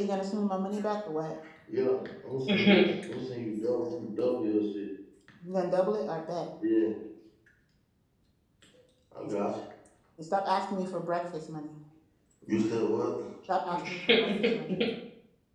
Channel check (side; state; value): both; identical; correlation 1.00